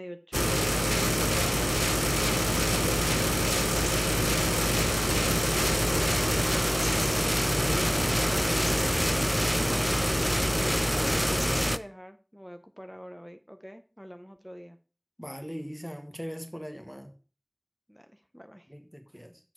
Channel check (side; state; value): both; identical; correlation 1.00